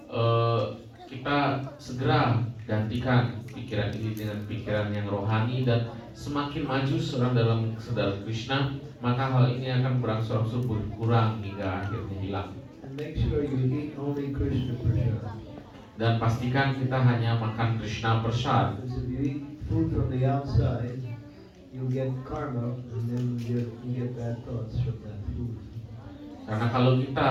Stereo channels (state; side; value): identical; both; correlation 1.00